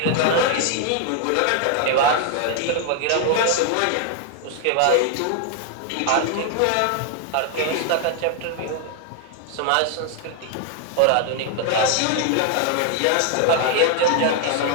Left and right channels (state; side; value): different; both; correlation 0.00